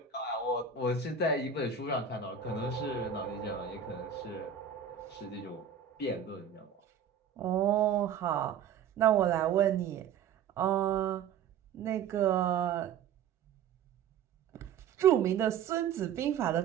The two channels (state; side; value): quieter; left; 7.5 dB